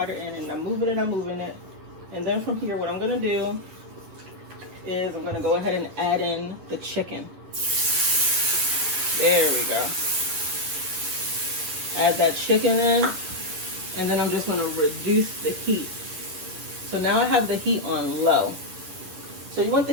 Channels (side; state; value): left; late; 11 ms